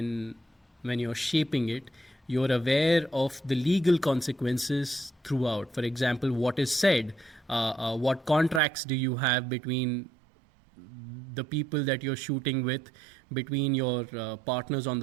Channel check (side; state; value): left; drops out; at 8.6 s